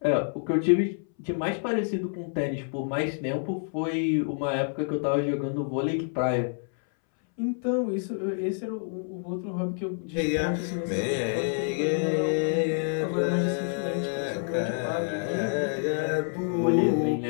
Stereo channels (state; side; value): silent; right; 60 dB below the other